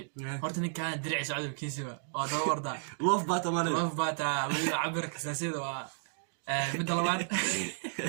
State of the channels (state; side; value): silent; left; digital silence